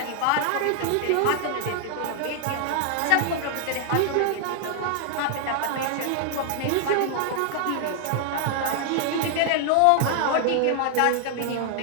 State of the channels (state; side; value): different; both; correlation 0.00